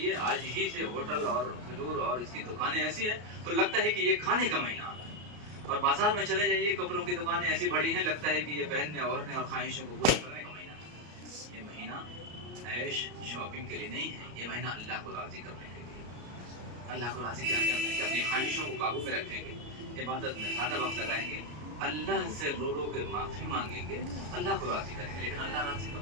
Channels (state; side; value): late; left; 33 ms